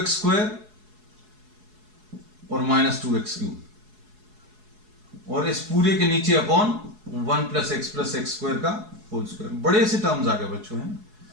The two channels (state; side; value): late; left; 4.7 ms